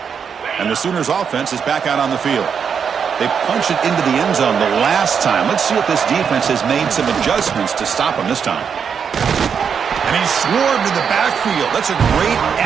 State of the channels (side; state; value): left; quieter; 6.9 dB